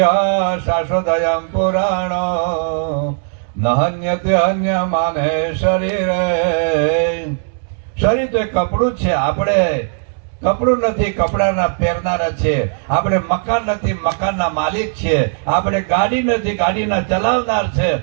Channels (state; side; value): silent; left; digital silence